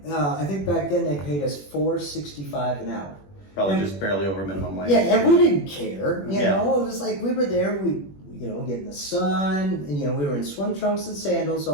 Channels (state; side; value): late; right; 21 ms